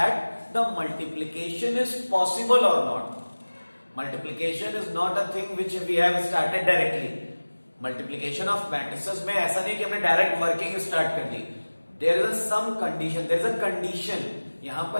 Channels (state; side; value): inverted; both; correlation -1.00